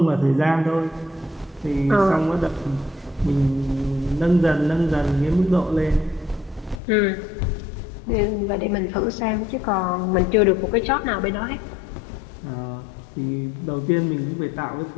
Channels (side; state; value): right; drops out; at 6.8 s